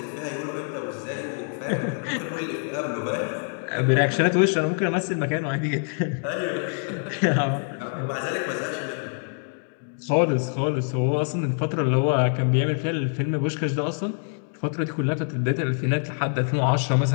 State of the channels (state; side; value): silent; right; 58 dB below the other